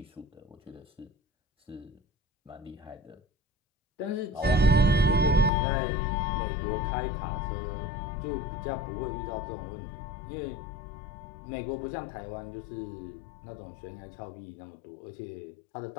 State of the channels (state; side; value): drops out; right; at 5.5 s